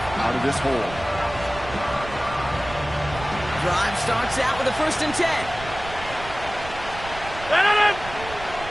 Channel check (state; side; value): noise; right; rumble, 13 dB below the sound